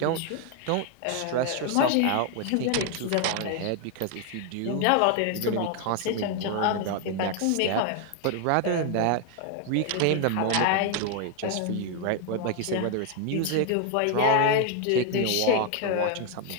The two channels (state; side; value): different; both; correlation 0.01